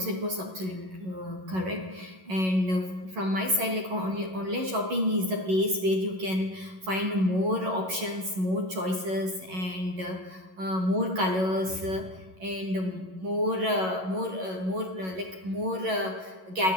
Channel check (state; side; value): late; left; 11 ms